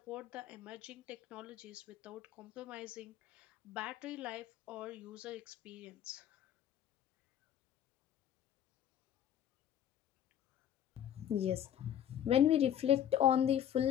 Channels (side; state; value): right; quieter; 10.3 dB